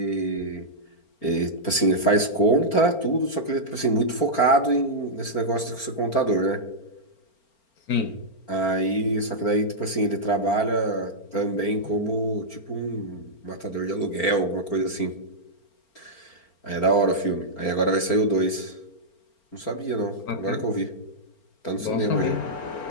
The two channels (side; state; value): right; late; 4.4 ms